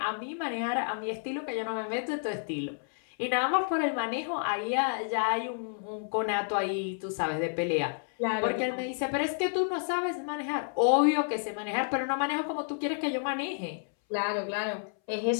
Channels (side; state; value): right; silent; 58 dB below the other